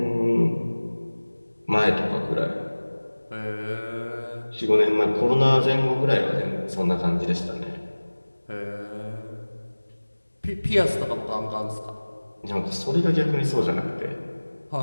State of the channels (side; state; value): both; inverted; correlation -1.00